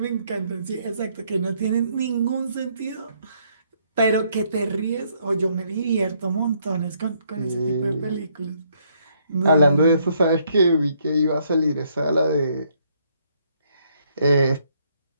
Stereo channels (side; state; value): both; inverted; correlation -0.70